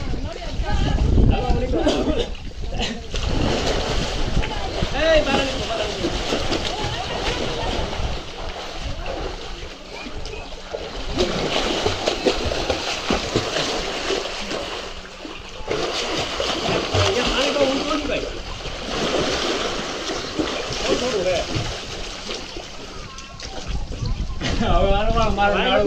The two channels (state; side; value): identical; both; correlation 1.00